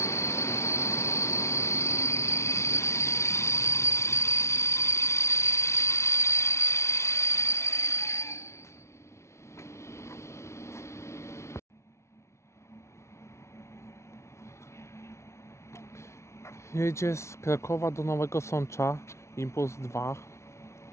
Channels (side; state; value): right; late; 0.13 ms